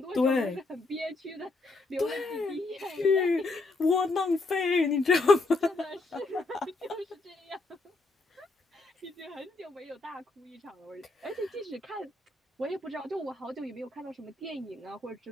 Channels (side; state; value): right; quieter; 3.2 dB